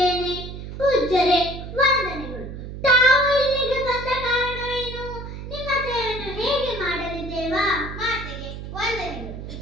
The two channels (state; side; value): noise; right; hum, 9 dB below the sound